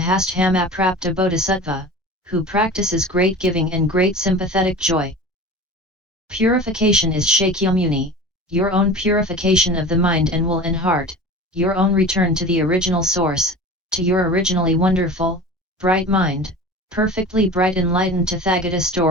prapta bodhisattva, who practices great giving and great sympathetic joy. Purification is Shakyamuni, your own purification of the mind and will and heart, your own return to the original source, to your originally wonderful, bright mind, perfectly bright enlightened Tathagata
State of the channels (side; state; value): both; normal; correlation 0.36